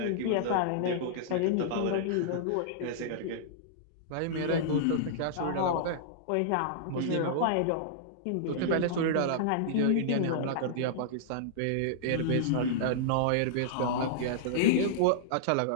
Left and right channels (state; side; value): different; both; correlation -0.02